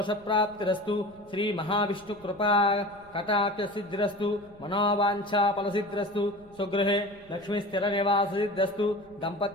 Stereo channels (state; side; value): noise; left; rumble, 26 dB below the sound